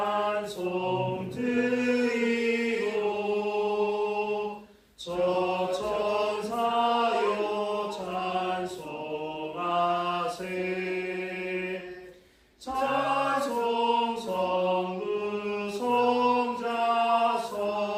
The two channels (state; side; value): identical; both; correlation 1.00